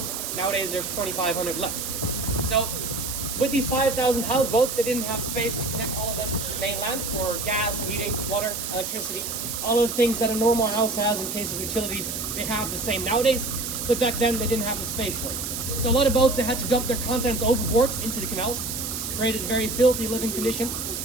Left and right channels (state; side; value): noise; right; hiss, 4 dB below the sound